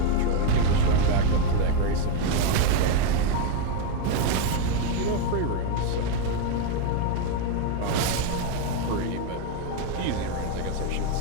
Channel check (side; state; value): both; different; correlation 0.01